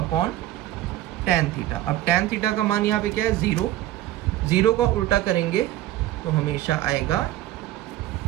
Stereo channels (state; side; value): quieter; left; 14.5 dB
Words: थीटा। अब tan थीटा का मान यहाँ पे क्या है, 0, 0 का उल्टा करेंगे तो हमेशा आएगा